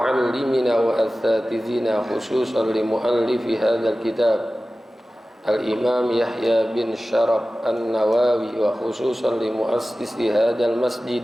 wa asatizina khususan li muallifi hadzal kitab Al-Imam Yahya bin Sharaf An-Nawawi wa khususan li muassisi hadzal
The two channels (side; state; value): both; normal; correlation 0.96